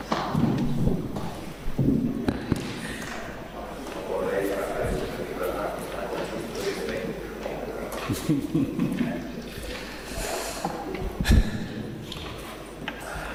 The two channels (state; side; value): identical; both; correlation 1.00